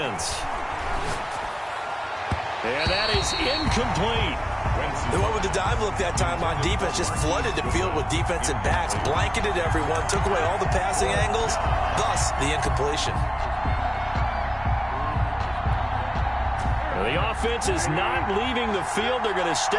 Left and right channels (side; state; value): both; identical; correlation 1.00